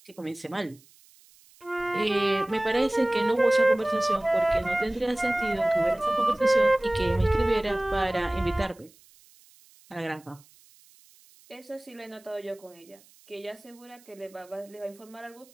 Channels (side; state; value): right; noise; hiss, 28 dB below the sound